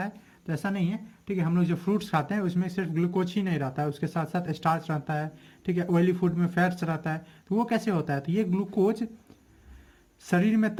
है, तो ऐसा नहीं है, ठीक है। हम लोग जो फ्रूट्स खाते हैं उसमें सिर्फ ग्लूकोज ही नहीं रहता है, उसके साथ साथ स्टार्च रहता है, ठीक है, ऑयली फूड में फैट्स रहता है। तो वो कैसे होता है, तो ये ग्लूकोज शरीर में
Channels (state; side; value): identical; both; correlation 1.00